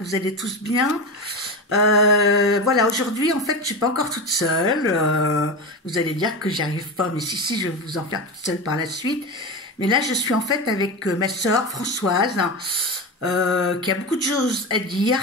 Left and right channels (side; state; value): both; normal; correlation 0.22